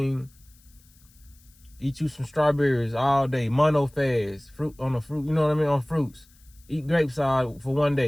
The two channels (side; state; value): left; noise; hiss, 29 dB below the sound